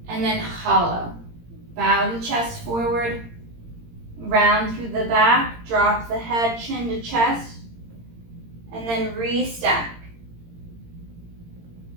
And then hollow. Bow the chest forward, round through the back, drop the head, chin to chest, and then restack.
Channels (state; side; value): late; left; 17 ms